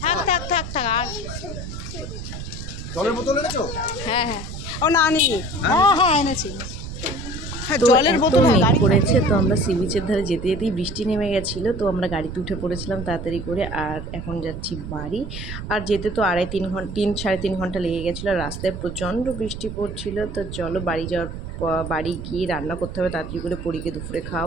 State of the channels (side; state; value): right; noise; rumble, 8 dB below the sound